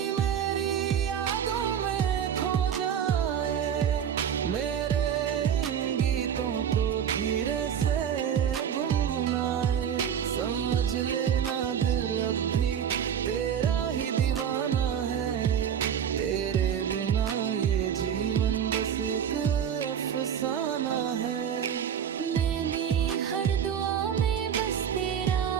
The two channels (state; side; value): quieter; left; 8.6 dB